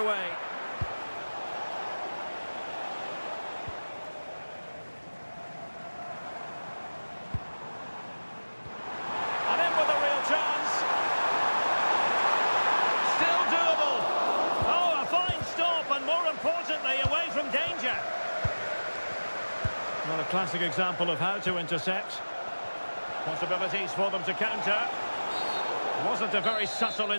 way. And in with a real chance. Still doable. Oh, a fine stop, and more importantly, away from danger. Not a classic example of how to intercept. Possibilities for them to counter. Wasn't a very subtle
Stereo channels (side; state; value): both; inverted; correlation -1.00